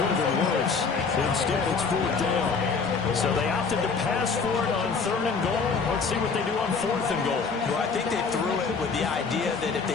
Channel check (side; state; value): right; quieter; 5.0 dB